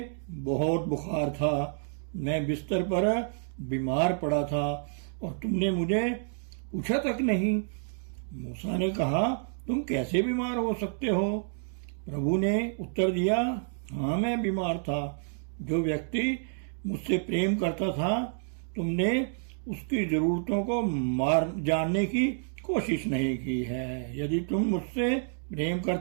बहुत बुखार था, मैं बिस्तर पर बीमार पड़ा था और तुमने मुझे पूछा तक नहीं। मूसा ने कहा, तुम कैसे बीमार हो सकते हो? प्रभु ने उत्तर दिया, हाँ मैं बीमार था। जो व्यक्ति मुझसे प्रेम करता था, तुमने उसकी जरूरतों को जानने की कोशिश नहीं की है। यदि तुम मुझसे प्रेम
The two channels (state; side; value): silent; left; digital silence